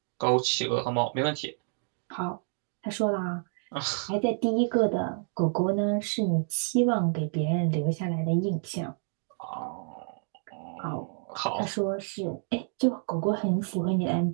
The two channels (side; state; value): left; silent; 59 dB below the other